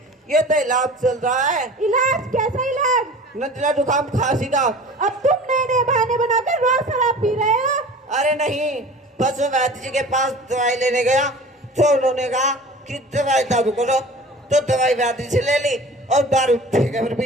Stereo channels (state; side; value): normal; both; correlation 0.41